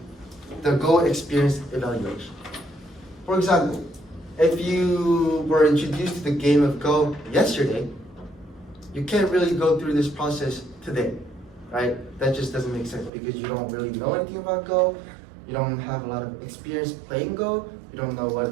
the Go experience evaluation. For example, if you were introduced to the game of Go yesterday, you can't really go through this process today, right? That just doesn't make sense, because you don't really know anything about Go, you don't have a lot of experience playing Go, you don't know what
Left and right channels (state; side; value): drops out; left; at 13.1 s